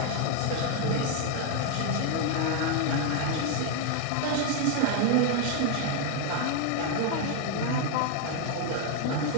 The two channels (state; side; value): different; both; correlation 0.01